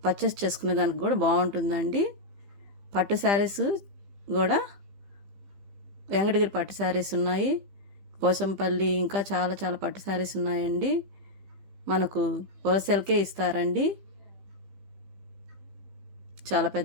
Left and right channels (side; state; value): left; late; 15 ms